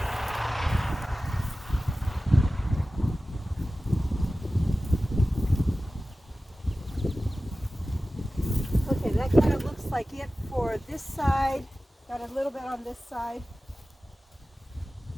Okay, that kind of looks like it for this side. Got a little bit on this side.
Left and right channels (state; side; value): normal; both; correlation 0.96